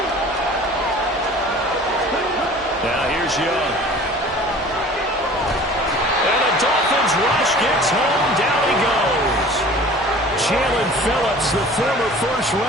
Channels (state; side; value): normal; both; correlation 0.45